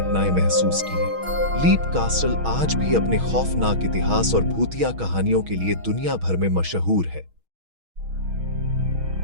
महसूस की हैं। लीप कासल आज भी अपने खौफनाक इतिहास और भूतिया कहानियों के लिए दुनिया भर में मशहूर है।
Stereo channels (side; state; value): left; late; 6.3 ms